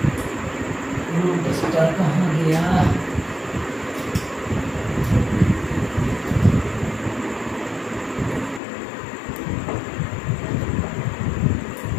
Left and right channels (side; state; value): right; drops out; at 8.6 s